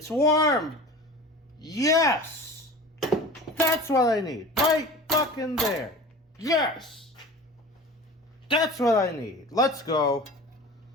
warm! Yes! That's what I need. Right fucking there. Yes! That's what I need. Let's go.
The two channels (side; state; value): both; normal; correlation 0.37